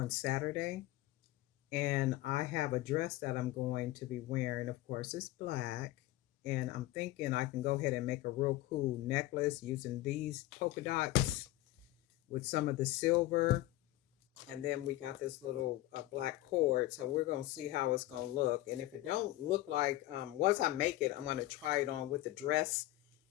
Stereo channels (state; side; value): quieter; right; 16.5 dB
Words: Saturday, and I have a dress that I'm going to be wearing. Of course, it's black. And I'm thinking I can go ahead and make a real cool necklace using these polka dots with some of the silver. And then we got this little black cord. So we're going to see how it's going to look. And if it don't look like, once I make it, I'm going to try it on with the dress